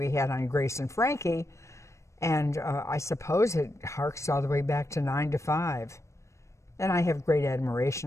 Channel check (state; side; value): late; right; 0.14 ms